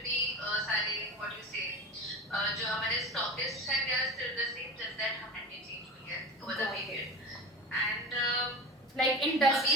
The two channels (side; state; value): both; normal; correlation 0.29